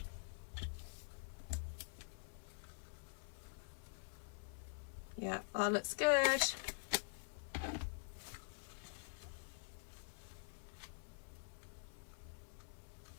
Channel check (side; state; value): right; silent; digital silence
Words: Yeah, that looks good.